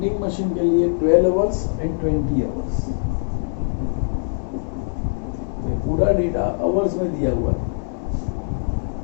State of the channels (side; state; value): right; silent; digital silence